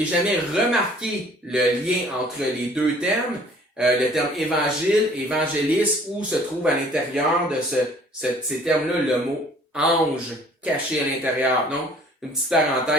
jamais remarqué le lien entre les deux termes, le terme évangile, évangéliste, où se trouve à l'intérieur de ces termes-là le mot ange caché à l'intérieur. Donc, une petite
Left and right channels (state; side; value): normal; both; correlation 0.54